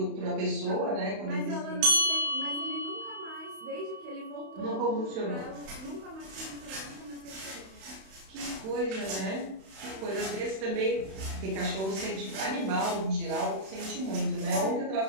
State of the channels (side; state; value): left; late; 31 ms